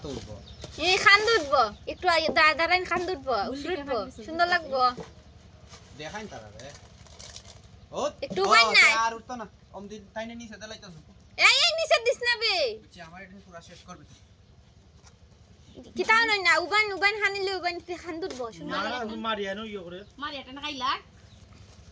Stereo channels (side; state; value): both; identical; correlation 1.00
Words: উঠবো এই খান দুধবো একটু দাঁড়াইন খান দুধবো উঠবো সুন্দর লাগবো দেখাইন তারা রে ও একটু উবাই নাই আর উঠতো না অমদি তাইনে নিচে দেলাইতাছ এই নিচে দিস না বে আমার এটা পুরো শেষ করবে কি তাও নই না উবান হানিলে উবান খান দুধবো সুন্দর না মারিয়া নো ইয়ে করে মারিয়াটা না খাইলা